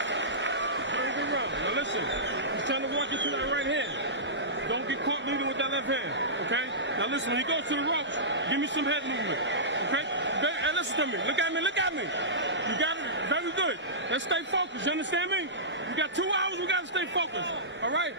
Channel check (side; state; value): both; normal; correlation -0.18